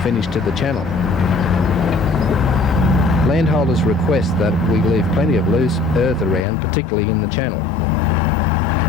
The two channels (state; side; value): drops out; right; at 6.5 s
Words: finish to the channel. Landholders request that we leave plenty of loose earth around, particularly in the channel.